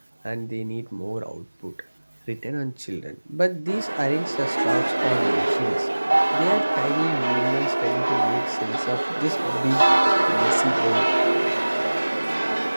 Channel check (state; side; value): inverted; both; correlation -1.00